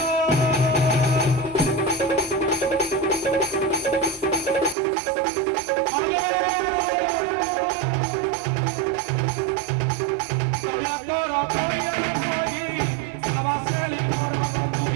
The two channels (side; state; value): left; drops out; at 4.8 s